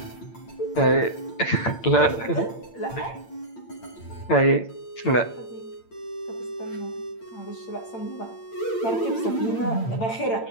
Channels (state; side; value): late; right; 8.8 ms